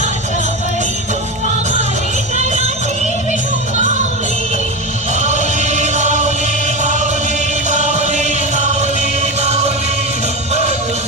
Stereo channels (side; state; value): both; normal; correlation 0.20